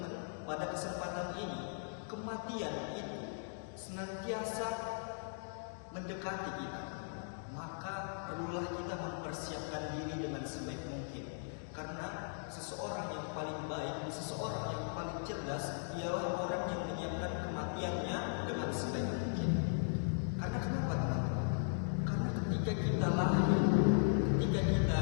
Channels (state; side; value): silent; right; digital silence